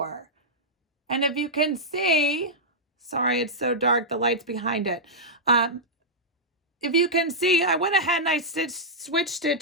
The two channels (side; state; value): both; normal; correlation -0.09